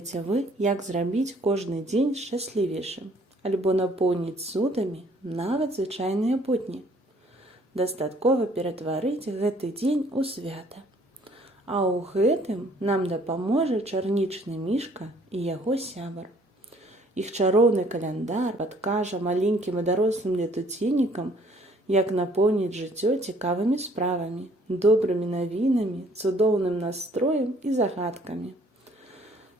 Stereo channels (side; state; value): both; normal; correlation 0.60